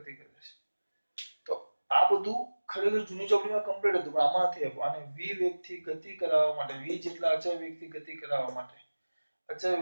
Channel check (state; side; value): inverted; both; correlation -1.00